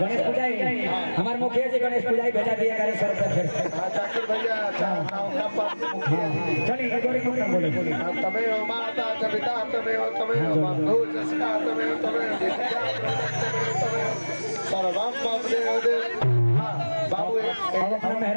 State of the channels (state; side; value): inverted; both; correlation -1.00